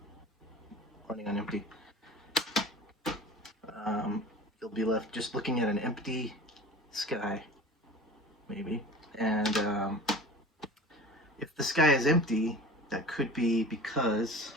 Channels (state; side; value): normal; both; correlation 0.38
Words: running on empty. You'll be left just looking at an empty sky, maybe. And if the sky is empty, that could be because